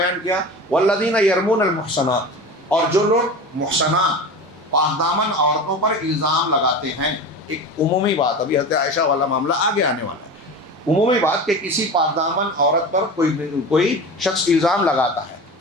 کیا، والذین یرمون المحصنات، اور جو لوگ محصنات پاک دامن عورتوں پر الزام لگاتے ہیں۔ ایک عمومی بات، ابھی حضرت عائشہ والا معاملہ آگے آنے والا ہے، عمومی بات کہ کسی پاک دامن عورت پر کوئی شخص الزام لگاتا ہے،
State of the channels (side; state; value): both; normal; correlation 0.31